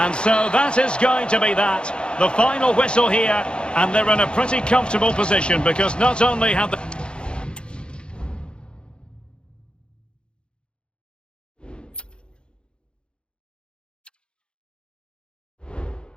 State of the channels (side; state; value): right; late; 0.053 ms